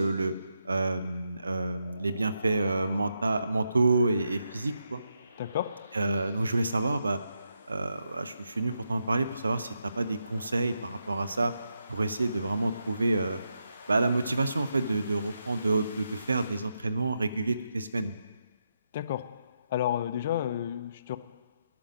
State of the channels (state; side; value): inverted; both; correlation -0.83